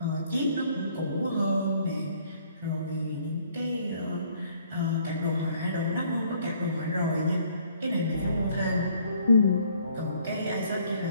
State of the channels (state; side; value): inverted; both; correlation -0.62